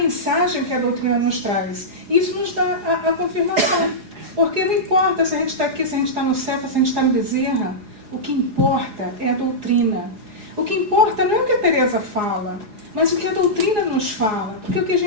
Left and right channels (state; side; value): late; left; 4.8 ms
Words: que a doutrina nos traz. E isso nos dá a confirmação. Porque não importa se a gente está aqui, se a gente está no céu, se a gente está no Bezerra. O que importa é a doutrina. O que importa não é o que a Teresa fala, mas o que a doutrina nos fala. Porque o que a